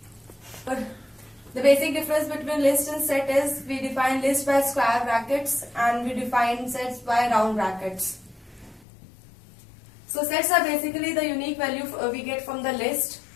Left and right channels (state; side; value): drops out; right; at 8.8 s